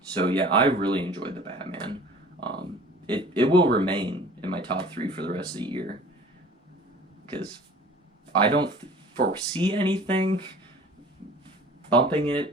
So yeah, I really enjoyed The Batman. It will remain in my top 3 for the rest of the year, because I don't foresee anything bumping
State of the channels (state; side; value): normal; both; correlation 0.46